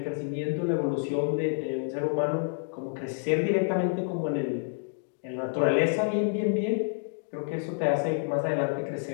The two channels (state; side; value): silent; right; digital silence